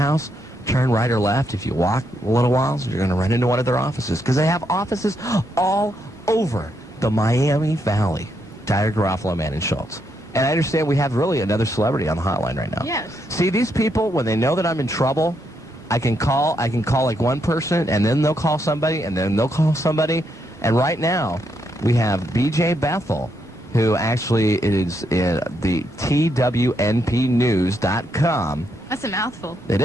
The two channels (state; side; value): normal; both; correlation 0.78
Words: turn right or left. If you walk a little while, you're going to run into one of their offices because they have offices all over the Miami Valley. Dyer, Garofalo, Manna, Schultz. And I understand we have really another celebrity on the hotline right now. Yes. See, these people, when they know that I'm in trouble, I can call like one person, and then they'll call somebody, and then they'll call somebody. And right now, we have BJ Bethel, who actually is the TWNPnews.com. That's a mouthful. It